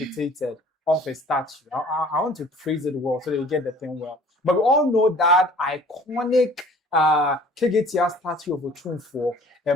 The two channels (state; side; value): normal; both; correlation 0.51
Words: off a statue. I want to phrase it well so that you get the thing well. But we all know that iconic Kegetia statue of Otunfo, a